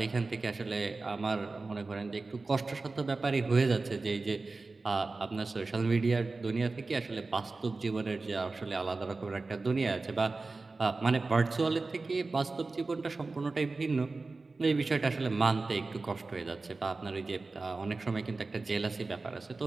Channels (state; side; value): quieter; left; 3.7 dB